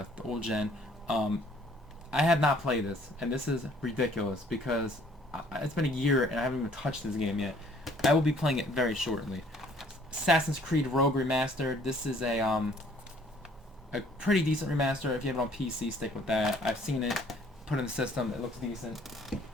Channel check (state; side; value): normal; both; correlation 0.59